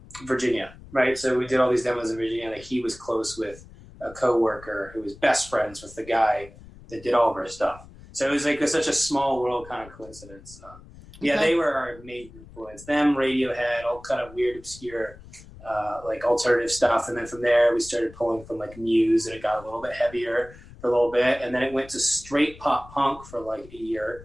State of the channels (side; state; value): left; noise; rumble, 20 dB below the sound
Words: Virginia. Right, so we did all these demos in Virginia. Like, he was close with a coworker who was best friends with the guy that did all of our stuff. So it was like such a small world kind of coincidence. Yeah, they were our major influence. Them, Radiohead, all kind of weird, obscure, like alternative stuff. And then from there, we started pulling from like Muse, and it got a little bit heavier for a little bit. And then it went to straight pop punk for like a year.